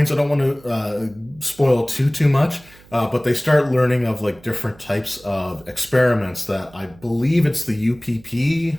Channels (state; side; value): noise; right; hum, 25 dB below the sound